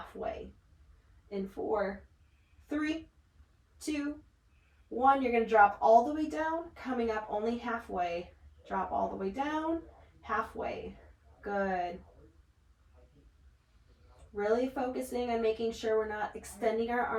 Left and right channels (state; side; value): identical; both; correlation 1.00